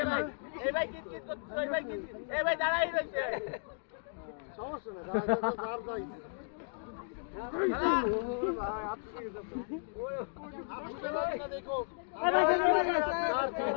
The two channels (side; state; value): right; silent; digital silence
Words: ভাই এই ভাই কিত করছিস ওই ভাই কিত এই ভাই দাঁড়াই রইছে সমস্যা না যার যাই দেখো